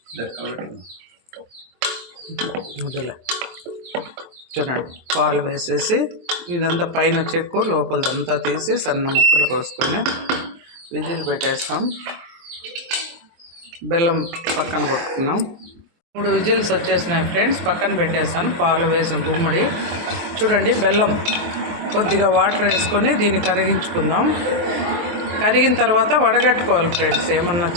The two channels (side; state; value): left; late; 23 ms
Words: చూడండి, పాలు వేసేసి ఇదంతా పైన చెక్కు లోపలదంతా తీసి సన్న ముక్కలు కోసుకొని విజిల్ పెట్టేస్తాం. బెల్లం పక్కన కొట్టుకున్నాం. 3 విజిల్స్ వచ్చేసినాయి ఫ్రెండ్స్. పక్కన పెట్టేస్తాను. పాలు వేసిన గుమ్మడి. చూడండి, బెల్లం కొద్దిగా వాటర్ వేసుకొని దీన్ని కరిగించుకుందాం. కరిగిన తర్వాత వడగట్టుకోవాలి ఫ్రెండ్స్. ఏమన్నా